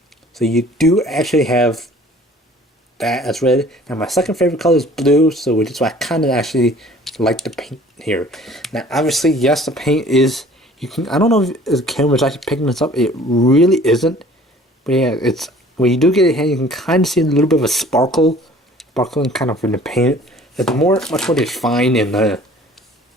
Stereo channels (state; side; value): normal; both; correlation 0.50